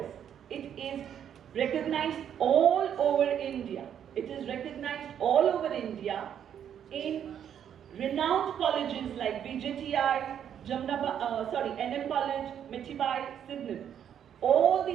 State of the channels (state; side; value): quieter; left; 9.2 dB